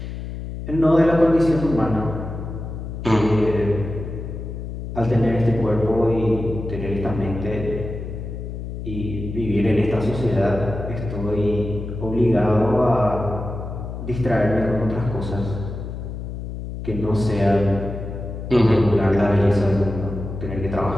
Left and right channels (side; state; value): left; noise; hum, 7 dB below the sound